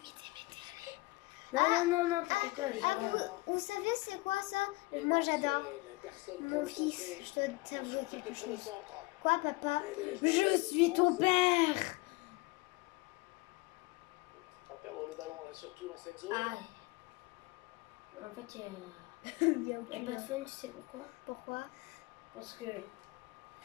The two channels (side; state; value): right; quieter; 23.2 dB